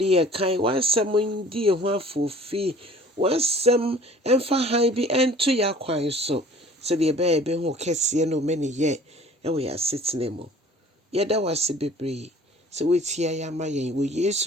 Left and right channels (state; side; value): normal; both; correlation 0.49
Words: ye kan, wasem ndi ye ho afofi. Wasem emfa han bi ento ya kwan so. Se de be ho kese no meni ye. Ewe ya sitne mo. Yeda wase bebre. Se wetia ya ma yen wo